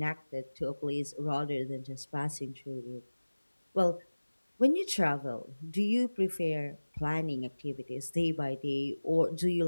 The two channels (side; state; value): both; inverted; correlation -1.00